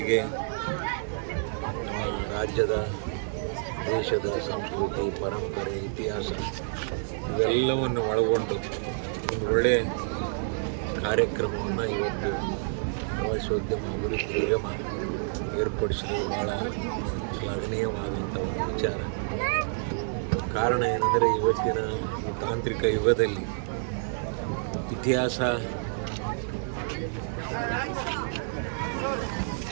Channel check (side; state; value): left; silent; digital silence